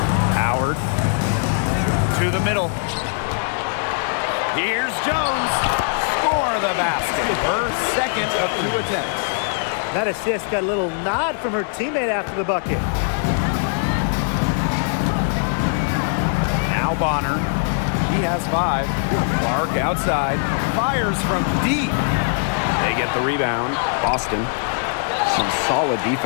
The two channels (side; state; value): right; silent; digital silence